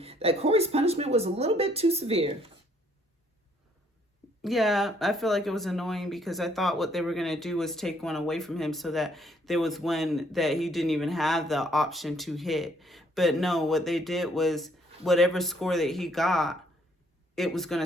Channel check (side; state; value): both; normal; correlation 0.66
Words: that Corey's punishment was a little bit too severe? Yeah, I feel like it was annoying because I thought what they were going to do was take one away from him so that there was one that he didn't even have the option to hit. But no, what they did was whatever score that he got, it was going